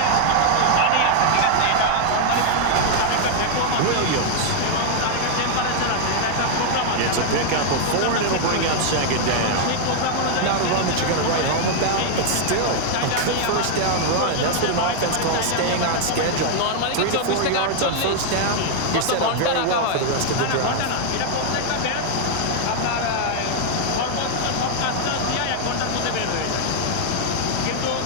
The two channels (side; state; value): both; different; correlation 0.00